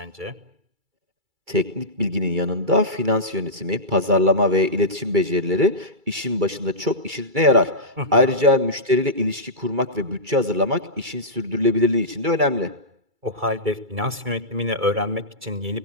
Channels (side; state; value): left; late; 2.3 ms